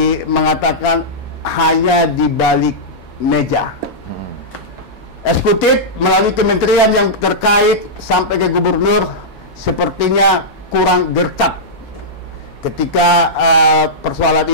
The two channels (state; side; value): normal; both; correlation -0.11